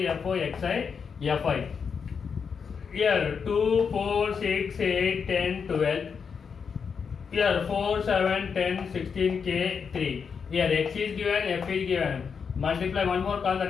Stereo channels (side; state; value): right; quieter; 6.2 dB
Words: fo, xi, fi. Here 2, 4, 6, 8, 10, 12. Here 4, 7, 10, 16, k, 3. Here x is given, f is given. Multiply one more column,